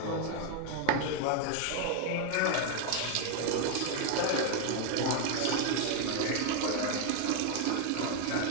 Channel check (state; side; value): different; both; correlation 0.01